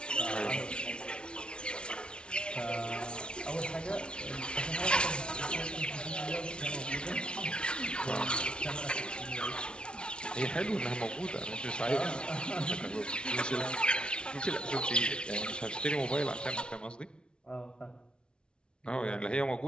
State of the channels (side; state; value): right; late; 0.057 ms